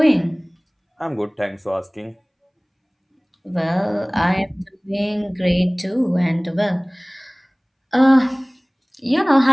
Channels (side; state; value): both; identical; correlation 1.00